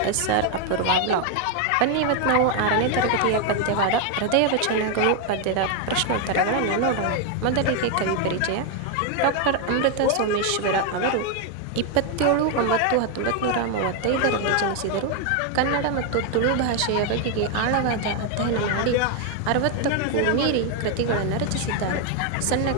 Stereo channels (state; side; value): different; both; correlation 0.01